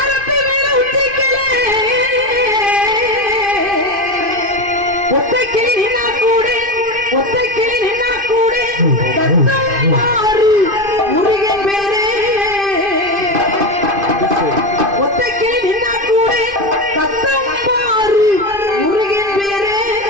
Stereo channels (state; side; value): late; left; 2.5 ms